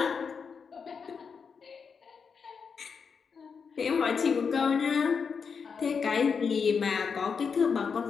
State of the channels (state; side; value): quieter; right; 5.9 dB